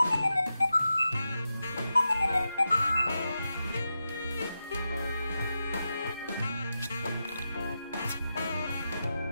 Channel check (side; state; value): both; inverted; correlation -0.89